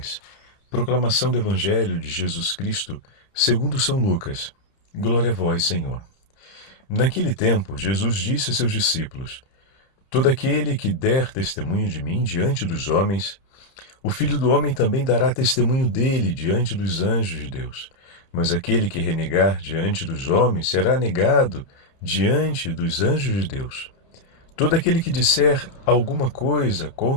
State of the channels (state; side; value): late; right; 30 ms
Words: Proclamação do Evangelho de Jesus Cristo, segundo São Lucas. Glória a vós, Senhor. Naquele tempo, Jesus disse a seus discípulos: todo aquele que der testemunho de mim diante dos homens, o Filho do Homem também dará testemunho dele diante dos anjos de Deus. Mas aquele que renegar diante dos homens será negado diante dos anjos de Deus. Todo aquele que disser alguma coisa